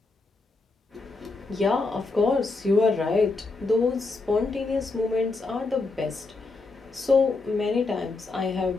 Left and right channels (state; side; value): quieter; right; 3.7 dB